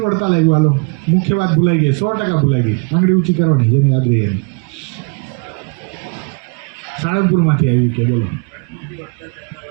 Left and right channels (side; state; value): left; quieter; 33.9 dB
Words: વડતાલ આવ્યું? હાલો, મુખ્ય વાત ભૂલાઈ ગઈ, 100% ભૂલાઈ ગઈ. આંગળી ઊંચી કરવાની, જેને યાદ રહી એને. સાળંગપુરમાંથી આવી કે? બોલો.